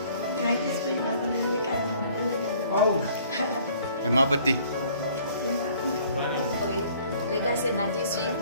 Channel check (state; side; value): inverted; both; correlation -0.56